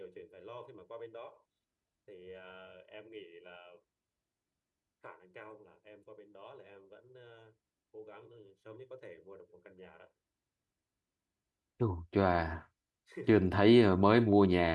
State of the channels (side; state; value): both; identical; correlation 1.00